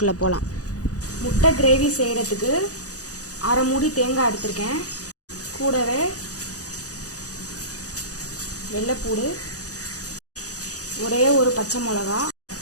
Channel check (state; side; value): late; right; 0.67 ms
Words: போகலாம். முட்டை கிரேவி செய்கிறதுக்கு அரை மூடி தேங்காய் எடுத்திருக்கேன். கூடவே வெள்ளைப்பூடு, ஒரே ஒரு பச்சை மிளகா,